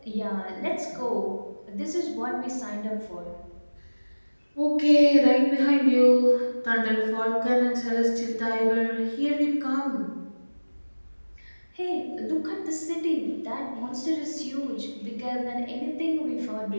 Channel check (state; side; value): inverted; both; correlation -1.00